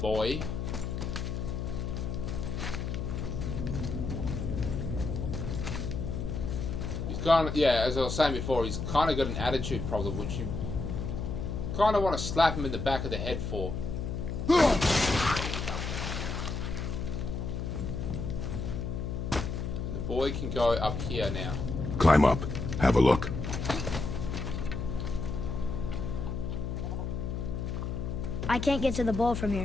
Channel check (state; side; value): noise; left; hum, 3 dB below the sound